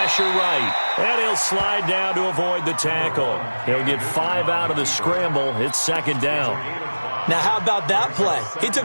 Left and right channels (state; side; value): inverted; both; correlation -1.00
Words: right. And he'll slide down to avoid the tackle. He'll get 5 out of the scramble. It's 2nd down. Now, how about that play? He